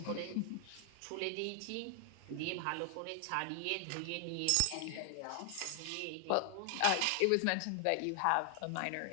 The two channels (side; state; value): both; different; correlation 0.00